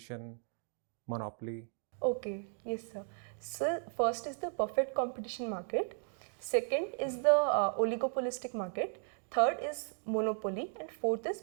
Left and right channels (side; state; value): left; silent; 54 dB below the other